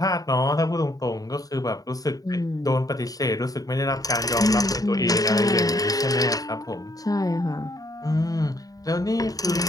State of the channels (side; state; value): right; late; 0.18 ms